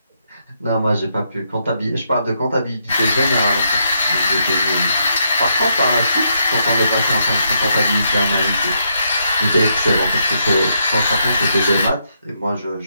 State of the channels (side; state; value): both; inverted; correlation -0.78